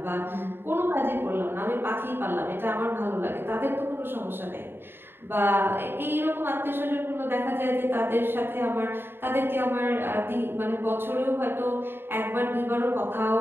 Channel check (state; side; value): late; left; 0.11 ms